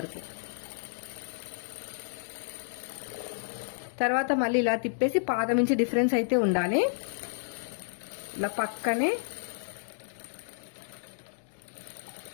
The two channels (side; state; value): right; silent; digital silence